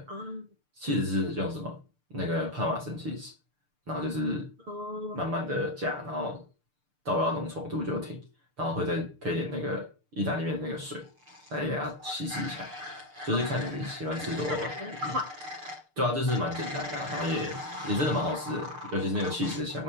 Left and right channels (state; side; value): late; left; 6.7 ms